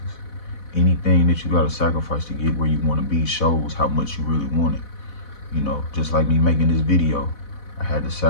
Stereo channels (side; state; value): right; late; 4.1 ms